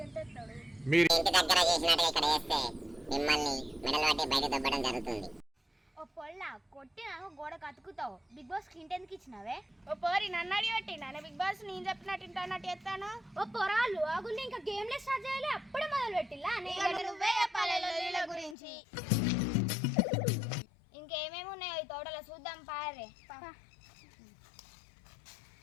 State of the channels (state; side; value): drops out; right; at 18.6 s